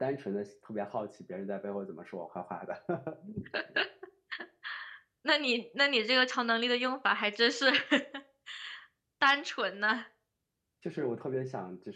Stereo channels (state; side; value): identical; both; correlation 1.00